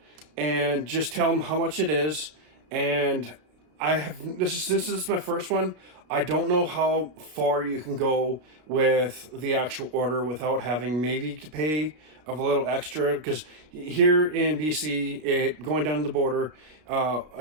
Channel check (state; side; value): late; left; 33 ms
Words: and just tell them how much it is. And this is my first one. I don't know how far you can go with the actual order without having maybe to pay a little extra, because here in BC, going down the border,